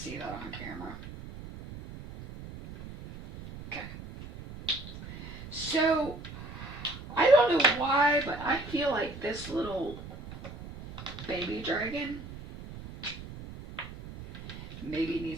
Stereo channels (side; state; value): right; noise; rumble, 12 dB below the sound